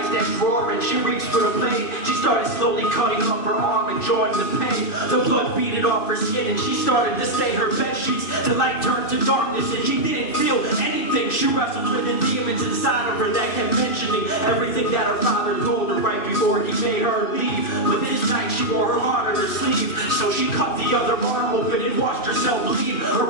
drawer and she reached for the blade. She started slowly cutting up her arm, enjoying the pain. The blood beaded off her skin and she started to stain her bed sheets. The light turned to darkness and she didn't feel anything. She wrestled with the demons inside of her that kept mentioning everything that her father told her right before he made her leave. But this night she wore her heart on her sleeve, so she cut the other arm open and watched herself bleed. Her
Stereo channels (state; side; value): late; right; 2.6 ms